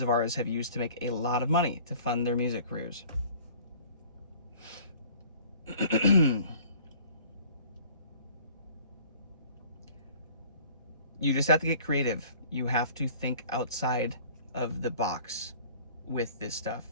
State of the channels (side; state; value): both; inverted; correlation -0.50